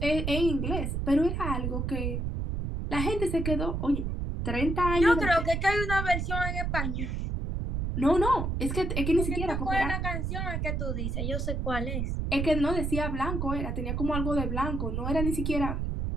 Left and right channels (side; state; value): right; noise; rumble, 1 dB below the sound